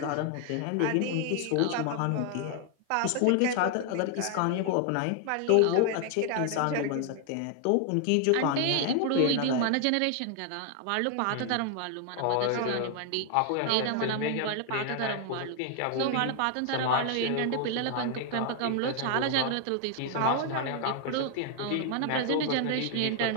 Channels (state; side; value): different; both; correlation 0.00